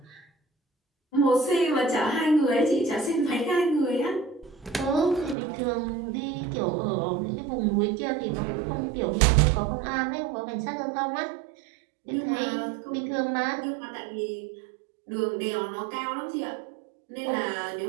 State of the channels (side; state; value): left; drops out; at 5.4 s